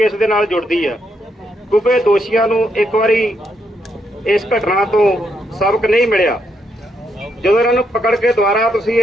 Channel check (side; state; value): both; normal; correlation 0.78